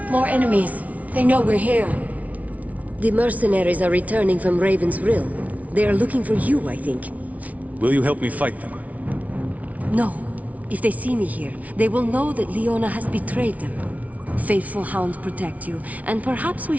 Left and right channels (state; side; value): late; left; 0.070 ms